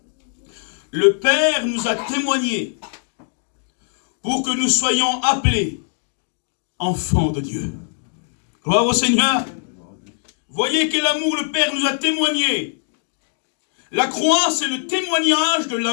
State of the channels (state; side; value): silent; right; digital silence